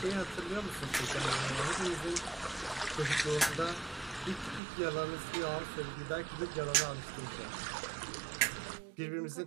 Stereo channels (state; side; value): drops out; left; at 4.6 s